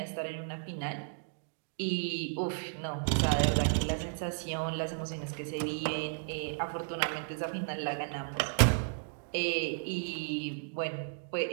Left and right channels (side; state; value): left; silent; digital silence